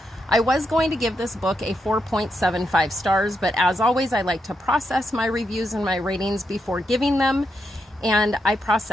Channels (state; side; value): normal; both; correlation 0.83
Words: I was going to give this book a 4.75 stars, but as always, I like to process my reviews and my ratings before giving them, and I